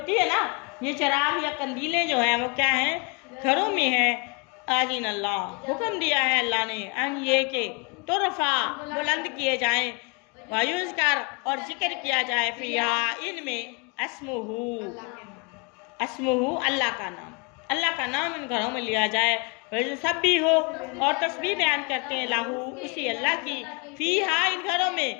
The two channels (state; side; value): quieter; right; 32.0 dB